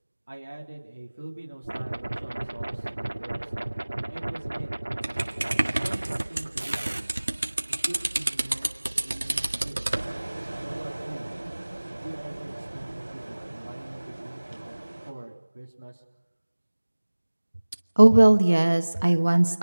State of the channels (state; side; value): inverted; both; correlation -1.00